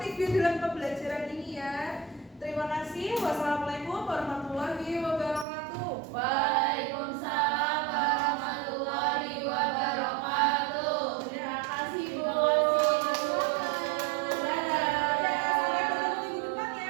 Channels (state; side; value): drops out; left; at 5.5 s